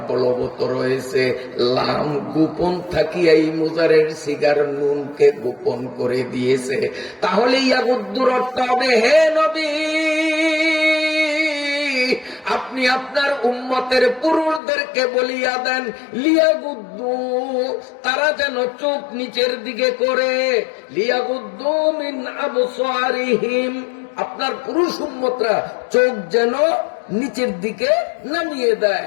বলবৎ রয়েছে। লাম গোপন থাকিয়া এই মুজারের সিগার নুনকে গোপন করে দিয়েছে। তাহলে ইয়াগুদ্দুর অর্থ হবে, হে নবী আপনি আপনার উম্মতের পুরুষদেরকে বলিয়া দেন, লিয়াগুদ্দু, তারা যেন চোখ নিচের দিকে করে, লিয়াগুদ্দু মিন আবসারিহিম, আপনার পুরুষ উম্মতরা চোখ যেন নিচের দিকে নামিয়ে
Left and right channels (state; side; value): drops out; right; at 14.6 s